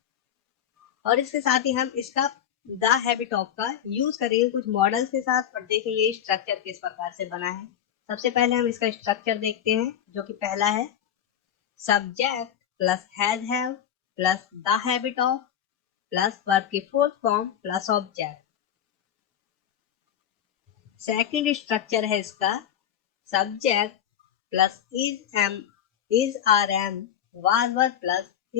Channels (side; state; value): right; quieter; 9.8 dB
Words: और इसके साथ ही हम इसका द हैबिट ऑफ का यूज करेंगे कुछ मॉडल्स के साथ और देखेंगे स्ट्रक्चर किस प्रकार से बना है। सबसे पहले हम इसका स्ट्रक्चर देखते हैं, जो कि पहला है subject plus have plus the habit of plus verb की fourth form plus object. Second structure है इसका subject plus is are am was verb plus